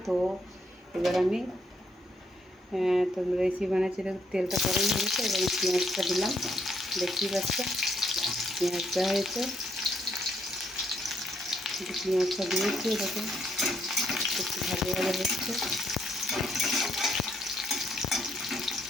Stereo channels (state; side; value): normal; both; correlation 0.73